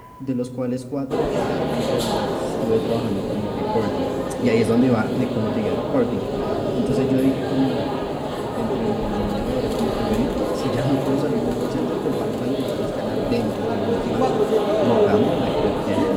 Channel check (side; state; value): both; identical; correlation 1.00